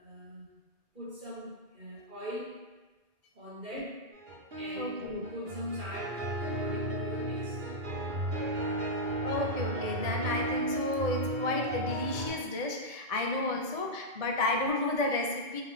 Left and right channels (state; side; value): late; left; 2.3 ms